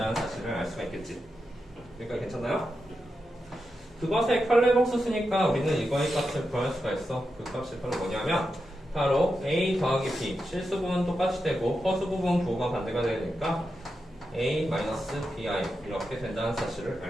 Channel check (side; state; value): both; normal; correlation 0.88